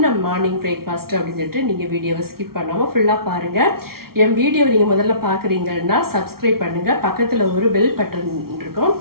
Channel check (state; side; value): late; left; 0.94 ms